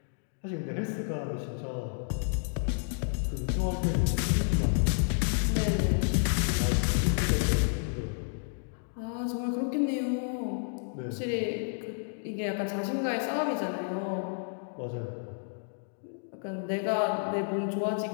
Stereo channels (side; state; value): right; silent; digital silence